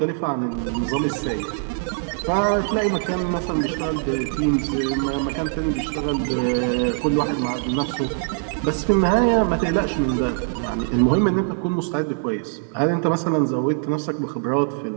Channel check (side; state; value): left; silent; 55 dB below the other